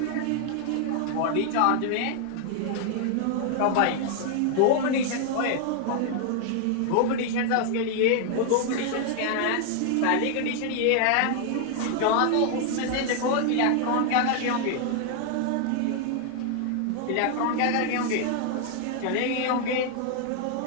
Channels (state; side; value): different; both; correlation 0.00